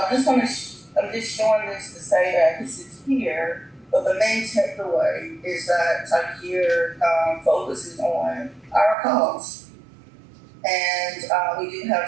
just showing this to say that this is here, but the main takeaway is that type here focuses on our costs. And we do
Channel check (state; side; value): drops out; left; at 9.0 s